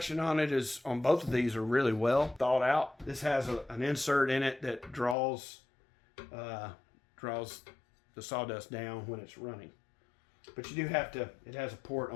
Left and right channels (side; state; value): right; drops out; at 5.2 s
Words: on both of these are really well thought out. This has an insert in it that draws the sawdust down when it's running. But you do have to, it has a port